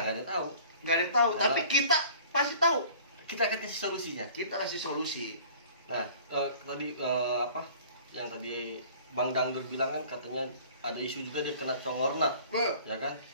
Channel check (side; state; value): both; inverted; correlation -0.48